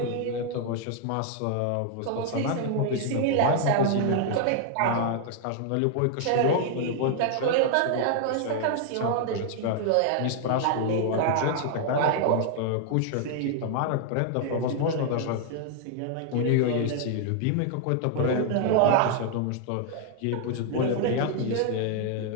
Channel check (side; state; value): both; different; correlation 0.00